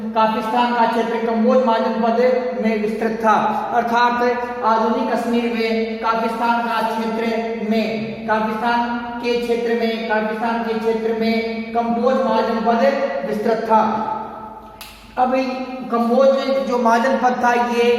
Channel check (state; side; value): identical; both; correlation 1.00